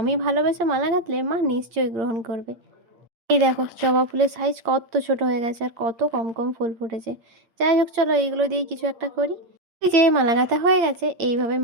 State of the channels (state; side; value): late; left; 8.7 ms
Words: ভালোবেসে মালা গাঁথলে মা নিশ্চয়ই গ্রহণ করবে। এই দেখো জবা ফুলের সাইজ কত ছোট হয়ে গেছে, আর কত কম কম ফুল ফুটেছে। যাই হোক, চলো এইগুলো দিয়েই কিছু একটা করি। এই যে মালা গাঁথা হয়ে গেছে, এইভাবে